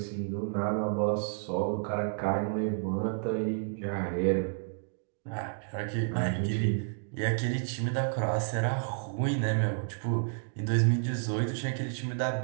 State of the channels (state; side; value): silent; left; digital silence